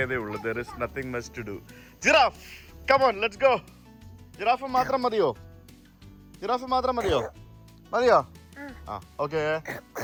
ഉള്ളൂ. There is nothing much to do. Giraffe, come on, let's go. Giraffe മാത്രം മതിയോ? ജിറാഫ് മാത്രം മതിയോ? ആ, ഓക്കെ.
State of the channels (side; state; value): both; identical; correlation 1.00